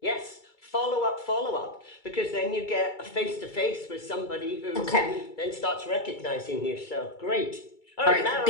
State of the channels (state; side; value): late; right; 2.3 ms